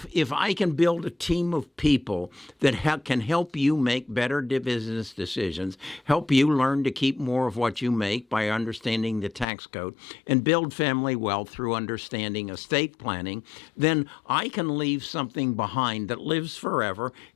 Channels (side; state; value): right; drops out; at 9.5 s